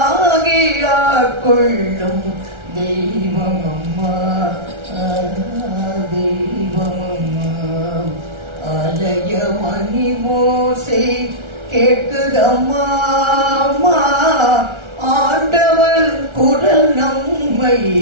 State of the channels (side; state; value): left; late; 1.3 ms